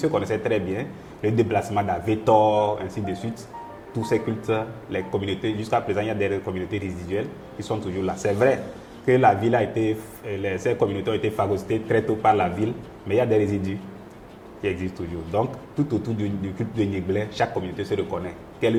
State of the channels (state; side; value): identical; both; correlation 1.00